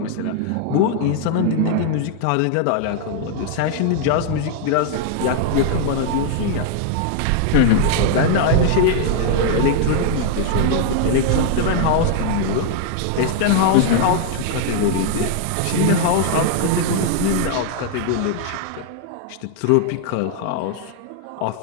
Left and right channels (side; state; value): both; different; correlation 0.00